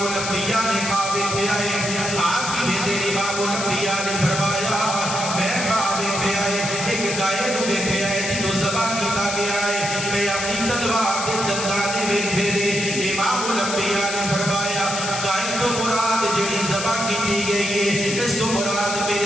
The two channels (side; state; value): left; noise; hiss, 4 dB below the sound